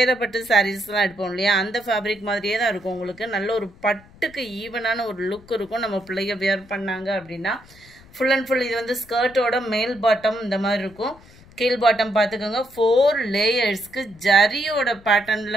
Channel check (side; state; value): left; noise; rumble, 24 dB below the sound